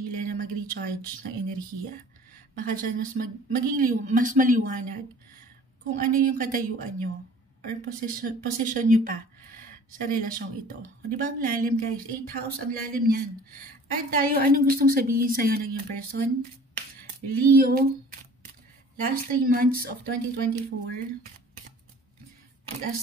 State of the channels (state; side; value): normal; both; correlation 0.48